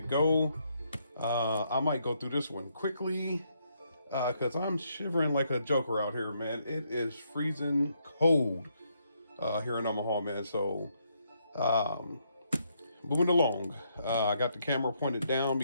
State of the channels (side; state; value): both; inverted; correlation -0.75